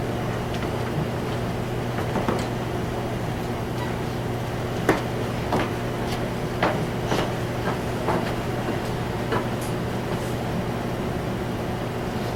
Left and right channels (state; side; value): identical; both; correlation 1.00